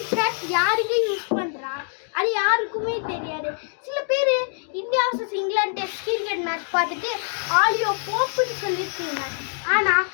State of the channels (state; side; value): silent; right; 56 dB below the other